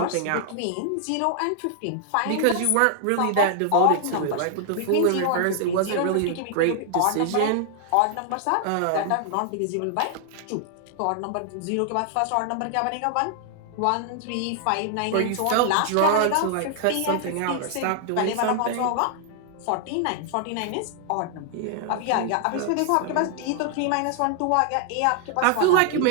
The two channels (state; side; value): different; both; correlation 0.00